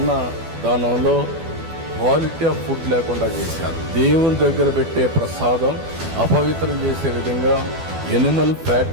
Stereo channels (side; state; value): left; late; 12 ms